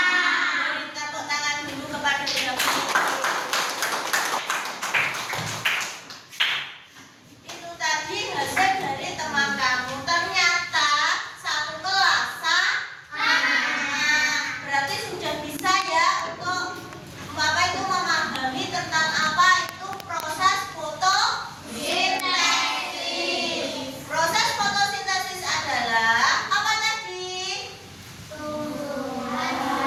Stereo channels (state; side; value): identical; both; correlation 1.00